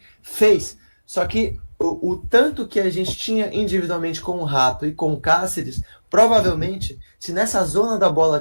Fez. Só que o tanto que a gente tinha individualmente com o Rato e com o Cáceres, provavelmente, se nessa zona da bola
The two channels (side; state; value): both; inverted; correlation -1.00